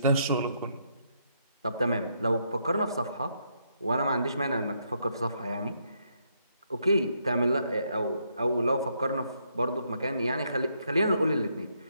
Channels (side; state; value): both; inverted; correlation -0.75